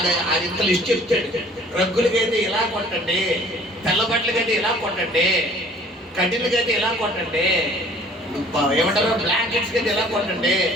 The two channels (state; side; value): normal; both; correlation 0.53